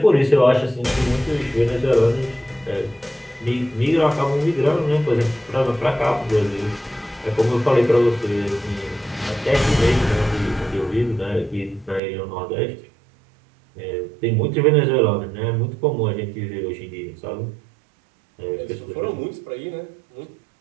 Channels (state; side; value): drops out; left; at 12.0 s